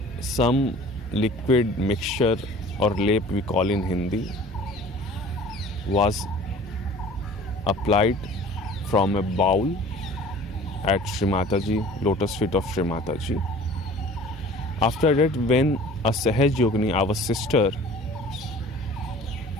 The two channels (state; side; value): normal; both; correlation 0.46